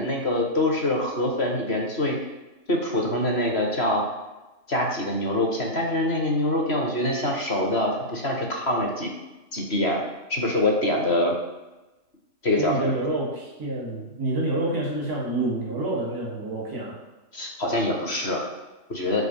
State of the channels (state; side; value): late; right; 3.0 ms